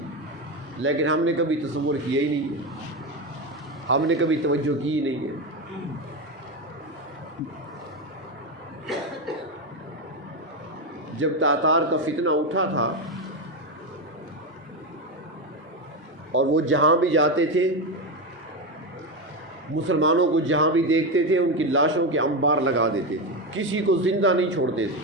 لیکن ہم نے کبھی تصور کیا ہی نہیں ہے، ہم نے کبھی توجہ کی ہی نہیں ہے۔ جب تاتار کا فتنہ اٹھا تھا اور وہ جہاں بھی جاتے تھے، مسلمانوں کو جہاں بھی دیکھتے تھے ان کی لاشوں کے انبار لگا دیتے تھے، کسی کو زندہ نہیں چھوڑتے تھے۔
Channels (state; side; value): normal; both; correlation 0.13